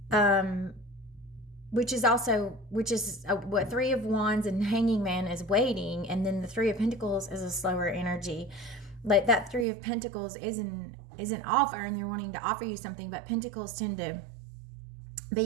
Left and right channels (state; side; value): drops out; left; at 9.7 s